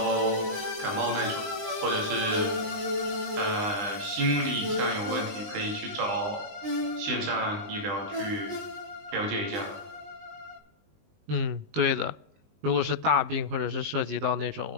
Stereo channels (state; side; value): late; left; 20 ms